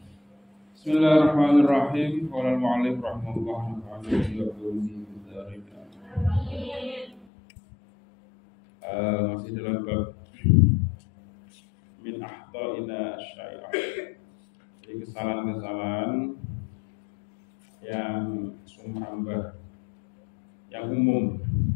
Bismillahirrahmanirrahim. Qala al-mu'allif rahimahullah ta'ala masih dalam bab min ahta'ina syai'ah. Jadi kesalahan-kesalahan yang sumhambah, yang umum,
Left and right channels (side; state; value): right; drops out; at 7.2 s